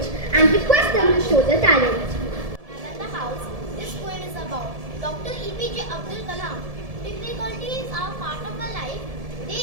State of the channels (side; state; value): left; late; 1.7 ms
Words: and request them to show their talent. Nalanda House, this poem is about Dr. EPJ Abdul Kalam. Difficulties are part of our life. They